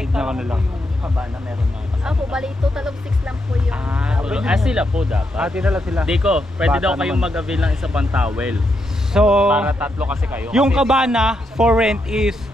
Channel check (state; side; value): normal; both; correlation 0.81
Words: tignan ko na lang. Kabana meron na. Opo, bali, total of 6 lang po yung... Sila po dapat. Ate na lang sila. Diko, pwede Bata daw kayong naman. mag-avail ng isa pang towel. So, Para tatlo kasi kayo. yung Kasi- cabana for rent is